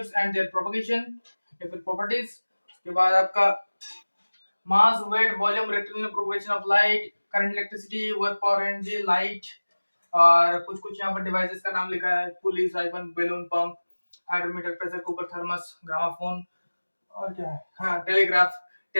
and their propagation या फिर प्रॉपर्टीज। उसके बाद आपका mass, weight, volume, rectangular propagation of light, current, electricity, work, power, energy, light. और कुछ कुछ यहाँ पर डिवाइसेस का नाम लिखा है: pulley, siphon, balloon, pump, hydrometer, pressure cooker, thermos, gramophone, और क्या है, हाँ, telegraph,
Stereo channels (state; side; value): inverted; both; correlation -1.00